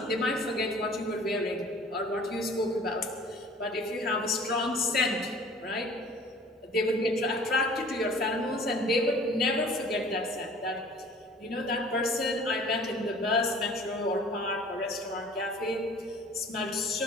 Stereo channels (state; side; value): normal; both; correlation 0.49